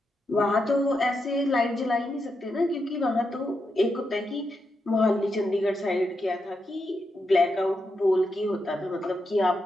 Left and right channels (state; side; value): normal; both; correlation 0.85